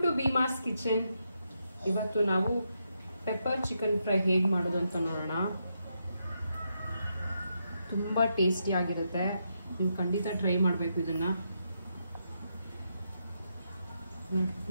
to Bheemas kitchen. ಇವತ್ತು ನಾವು pepper chicken fry ಹೇಗೆ ಮಾಡೋದು ಅಂತ ನೋಡೋಣ. ತುಂಬ ಟೇಸ್ಟಿ ಆಗಿರುತ್ತೆ, ನೀವು ಖಂಡಿತ ಟ್ರೈ ಮಾಡಬೇಕು ಇದನ್ನ.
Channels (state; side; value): inverted; both; correlation -0.82